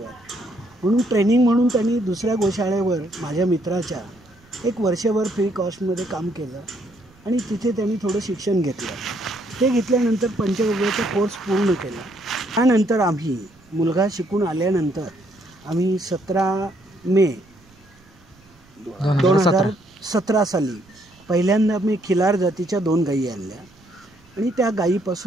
म्हणून ट्रेनिंग म्हणून त्यांनी दुसऱ्या गोशाळेवर माझ्या मित्राच्या 1 वर्षभर फ्री कॉस्टमध्ये काम केलं आणि तिथे त्यांनी थोडं शिक्षण घेतलं. ते घेतल्यानंतर पंचगव्याचा कोर्स पूर्ण केला. त्यानंतर आम्ही मुलगा शिकून आल्यानंतर आम्ही 17 मे 2017 साली पहिल्यांदा मी खिलार जातीच्या 2 गायी आणल्या आणि त्या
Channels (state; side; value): noise; right; rumble, 28 dB below the sound